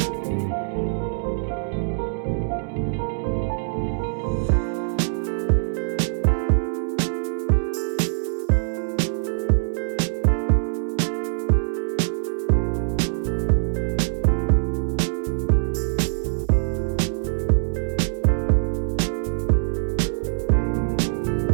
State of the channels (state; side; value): silent; left; 63 dB below the other